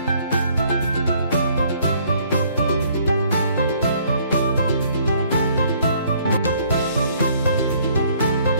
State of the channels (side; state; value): both; inverted; correlation -0.62